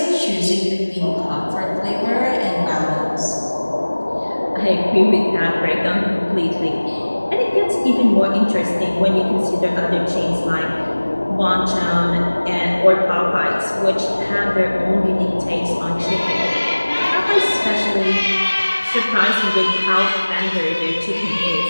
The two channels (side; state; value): both; inverted; correlation -1.00